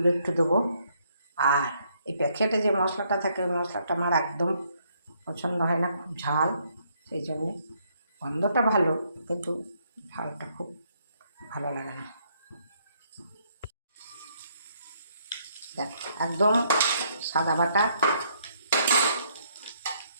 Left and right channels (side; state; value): both; inverted; correlation -0.70